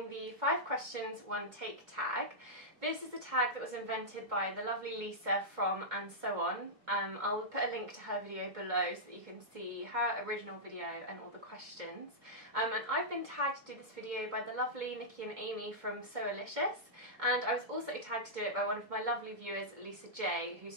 the 5 questions 1 take tag. This is the tag that was invented by the lovely Lisa from And So On. I'll put a link to her video below so that you can see her original video and all the questions. And I've been tagged to do this video by the lovely Nikki and Amy from Soalicious, and I was also tagged to do it by one of my lovely viewers, Lisa J, who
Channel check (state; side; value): late; left; 2.2 ms